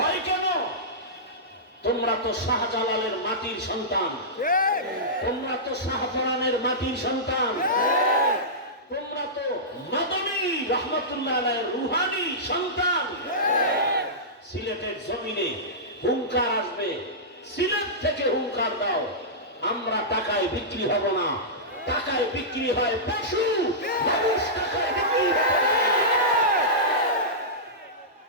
কেন? তোমরা তো শাহজালালের মাটির সন্তান, তোমরা তো শাহপরানের মাটির সন্তান, তোমরা তো মাদানী রহমাতুল্লাহ আলাইহির রুহানি সন্তান। সিলেটের জমিনে হুঙ্কার আসবে, সিলেট থেকে হুঙ্কার দাও, আমরা টাকায় বিক্রি হব না। টাকায় বিক্রি হয় পশু, মানুষ টাকায় বিক্রি হয়।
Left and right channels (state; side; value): normal; both; correlation -0.16